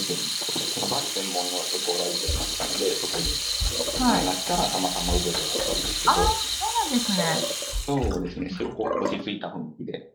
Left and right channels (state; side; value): identical; both; correlation 1.00